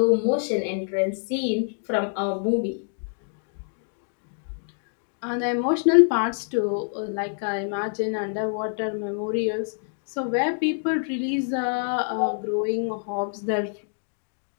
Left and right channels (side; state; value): right; silent; digital silence